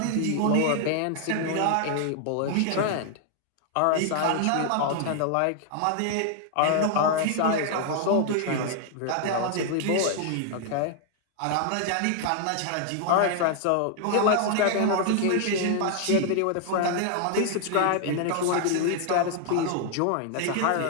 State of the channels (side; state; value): both; different; correlation 0.00